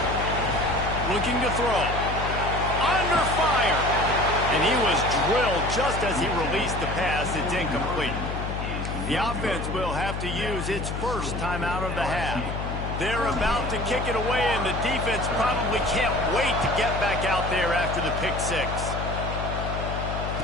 Looking to throw. Under fire. And he was drilled just as he released the pass. It's incomplete. The offense will have to use its first timeout of the half. They're about to kick it away, and the defense probably can't wait to get back out there after the pick six.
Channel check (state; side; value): noise; left; hum, 4 dB below the sound